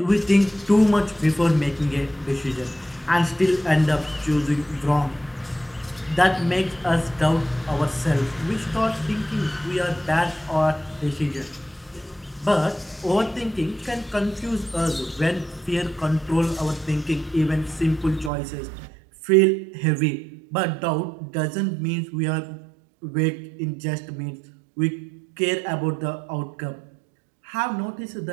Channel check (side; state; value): left; drops out; at 18.3 s